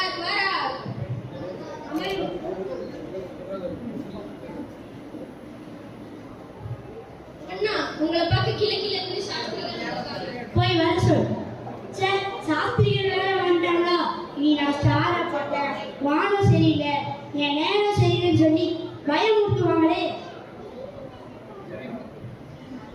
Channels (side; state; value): both; identical; correlation 1.00